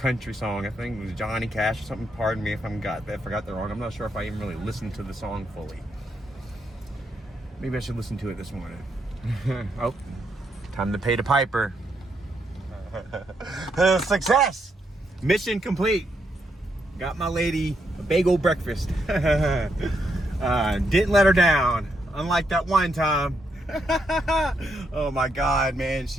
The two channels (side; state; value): both; normal; correlation 0.79